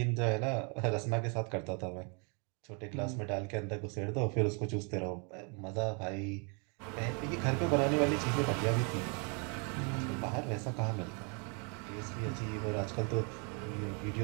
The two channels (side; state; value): left; quieter; 35.9 dB